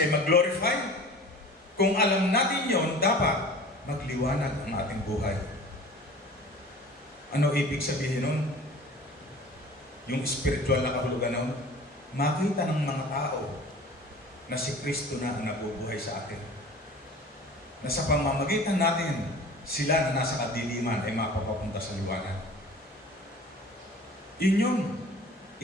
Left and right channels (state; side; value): normal; both; correlation 0.42